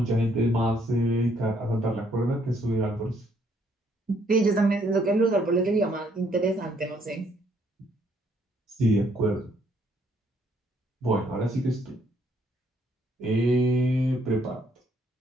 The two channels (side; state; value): both; normal; correlation 0.68